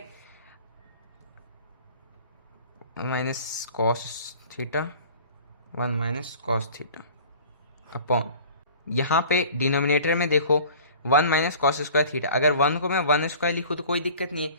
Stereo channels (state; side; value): inverted; both; correlation -0.45